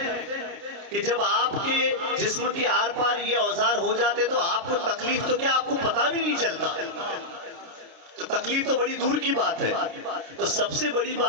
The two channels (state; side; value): late; left; 30 ms